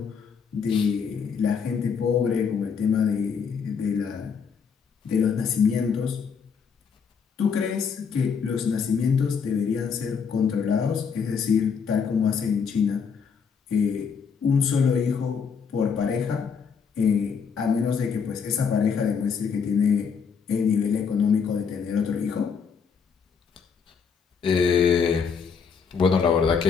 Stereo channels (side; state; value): right; quieter; 6.3 dB